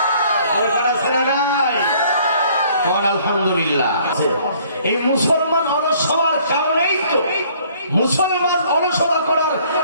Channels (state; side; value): inverted; both; correlation -0.59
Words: আলহামদুলিল্লাহ। এই মুসলমান অলস হওয়ার কারণেই তো, মুসলমান অলসতা করার